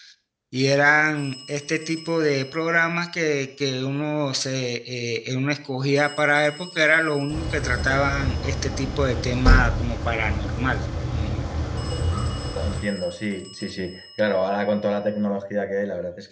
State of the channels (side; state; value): both; identical; correlation 1.00